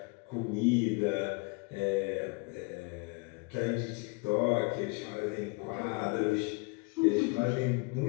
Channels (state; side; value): quieter; right; 29.9 dB